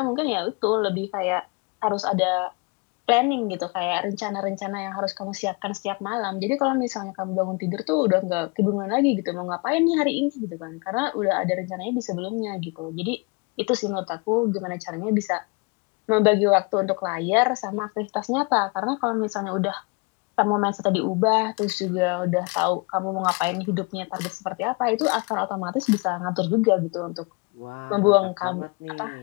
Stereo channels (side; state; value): right; quieter; 29.4 dB